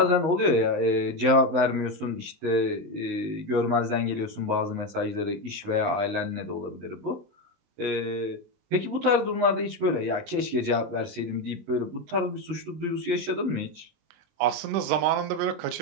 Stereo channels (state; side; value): late; left; 20 ms